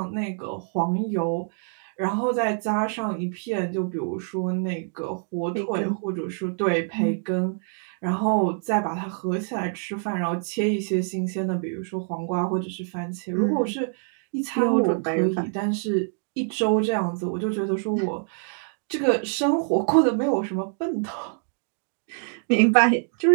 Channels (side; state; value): left; silent; 61 dB below the other